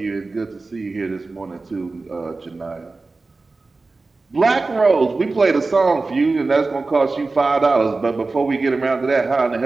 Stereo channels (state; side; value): quieter; left; 3.6 dB